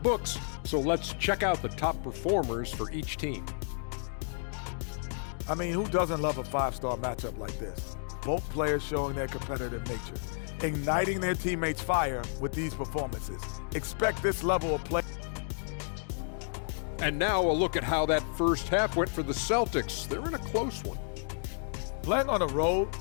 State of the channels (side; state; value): right; silent; digital silence